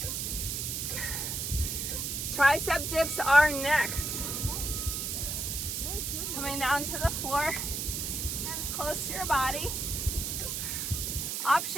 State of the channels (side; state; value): right; noise; hiss, 2 dB below the sound